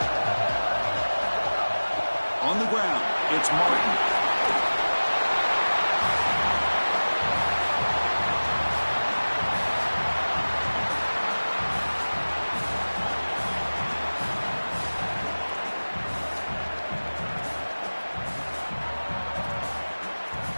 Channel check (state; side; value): inverted; both; correlation -1.00